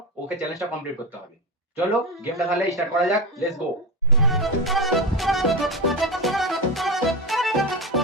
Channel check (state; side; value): normal; both; correlation 0.17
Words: ওকে চ্যালেঞ্জটা কমপ্লিট করতে হবে। চলো গেমটা তাহলে স্টার্ট করা যাক, লেটস গো।